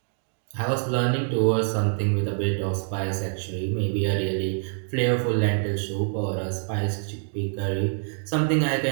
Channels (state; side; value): silent; left; 61 dB below the other